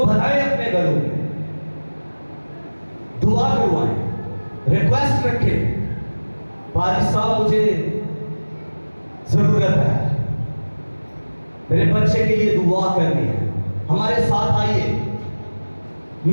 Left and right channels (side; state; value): both; inverted; correlation -1.00